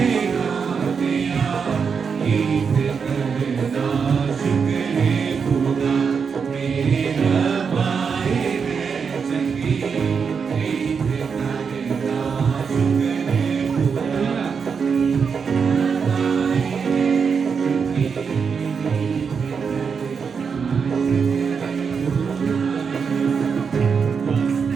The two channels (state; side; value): quieter; left; 6.0 dB